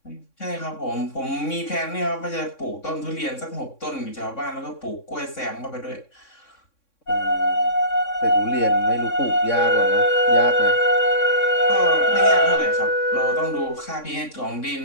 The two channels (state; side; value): late; right; 3.6 ms